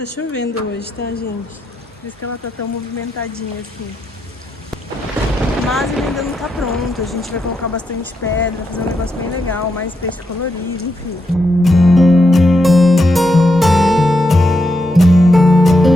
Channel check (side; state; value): both; normal; correlation 0.83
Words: chovendo hoje, tá, gente? Por isso que ela tá tão movimentadinha assim. Mas ele ainda não tá pronto. A gente vai colocar bastante pedra, fazer um negócio bem legal, mais peixe colorido, enfim.